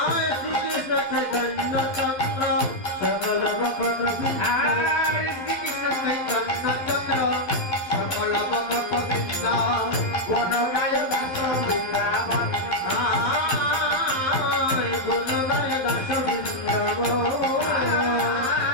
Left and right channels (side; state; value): right; late; 12 ms